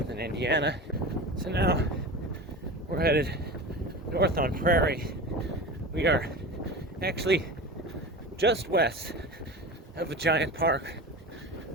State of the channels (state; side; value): normal; both; correlation 0.31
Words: in Indiana. So now we're headed north on Prairie. We are actually just west of a giant park